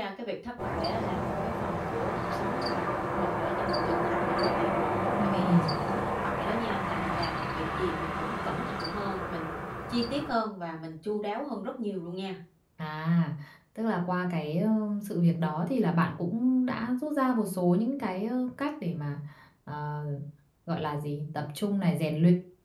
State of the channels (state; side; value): identical; both; correlation 1.00